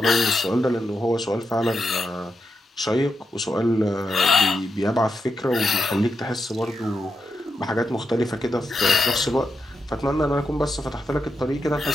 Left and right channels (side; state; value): both; normal; correlation 0.85